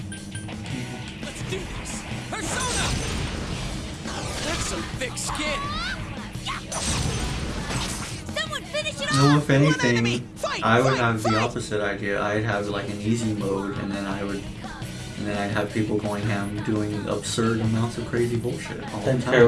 Let's do this. Persona! That's some thick skin. Someone finish it No, off! if anything, I would have the opposite idea. I'd have like an easy mode, and then I'd have people going ham doing absurd amounts of crazy bullshit all the Then time.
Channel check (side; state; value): both; identical; correlation 1.00